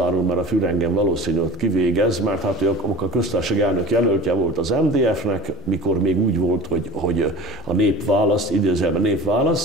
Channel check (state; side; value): normal; both; correlation 0.38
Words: mert a Fürr engem valószínűleg kivégez, mert hát ő a köztársasági elnök jelöltje volt az MDF-nek, mikor még úgy volt, hogy a nép választ, idézőjelben nép